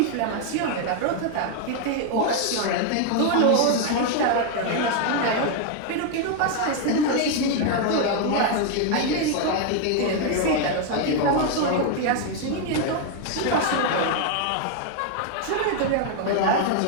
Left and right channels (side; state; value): both; different; correlation 0.00